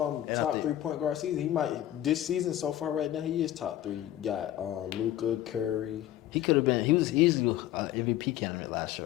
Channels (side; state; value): right; quieter; 13.0 dB